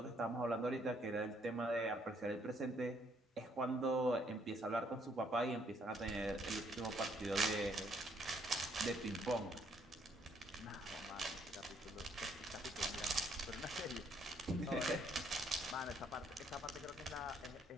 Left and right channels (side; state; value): both; normal; correlation 0.68